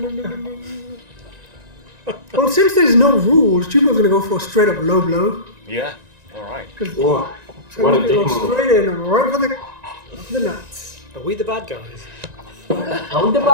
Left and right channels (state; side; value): late; left; 1.9 ms